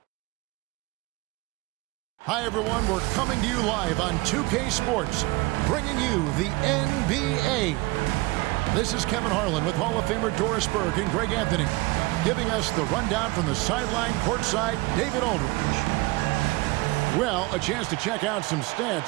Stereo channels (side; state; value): left; quieter; 22.8 dB